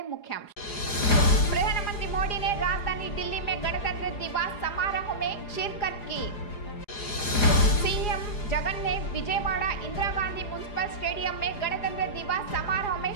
मुख्यांश। प्रधानमंत्री मोदी ने राजधानी दिल्ली में गणतंत्र दिवस समारोह में शिरकत की। सीएम जगन ने विजयवाड़ा इंदिरा गांधी म्युनिसिपल स्टेडियम में गणतंत्र दिवस समारोह में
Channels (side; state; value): right; late; 4.9 ms